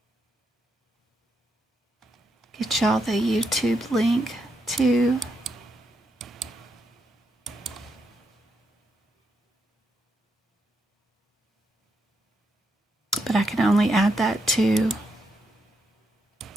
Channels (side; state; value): both; normal; correlation 0.80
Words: get y'all the YouTube link too. But I can only add that to